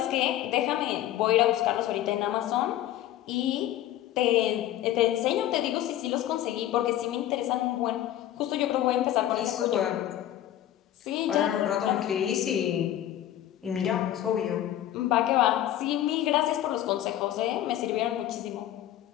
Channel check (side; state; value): right; quieter; 12.7 dB